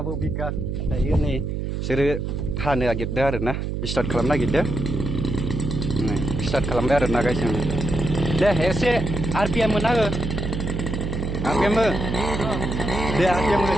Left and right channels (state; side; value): noise; right; hum, 3 dB below the sound